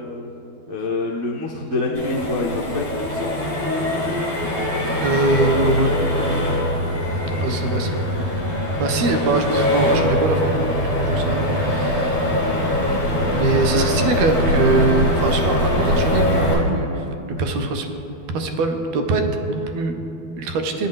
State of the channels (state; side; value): late; left; 12 ms